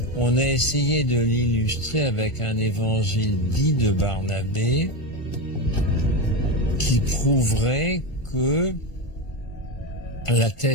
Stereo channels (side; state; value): right; late; 1.5 ms